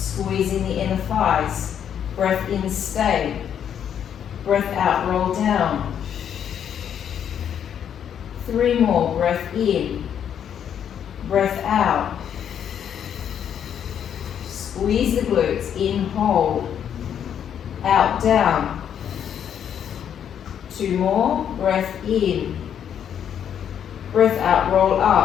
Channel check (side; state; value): right; quieter; 8.9 dB